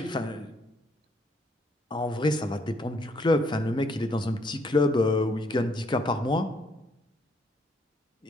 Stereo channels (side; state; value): both; normal; correlation 0.69